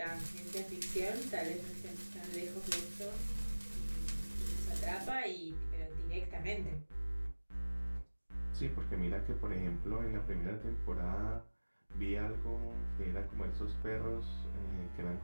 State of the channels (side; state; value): both; inverted; correlation -1.00